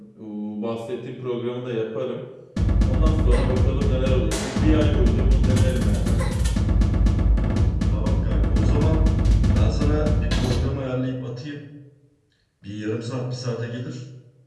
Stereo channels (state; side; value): identical; both; correlation 1.00